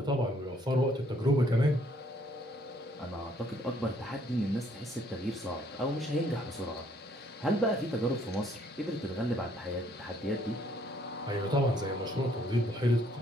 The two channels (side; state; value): both; normal; correlation 0.65